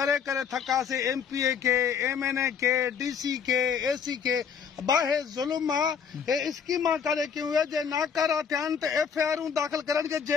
करे थकासीं MPA के, MNA के, DC के, AC के। बाहे ज़ुल्म आहे। हे स्कीमां काॾे कयूं जे नाकारा थिया आहिनि त FIR दाख़िल करनि खे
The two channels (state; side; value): quieter; right; 7.0 dB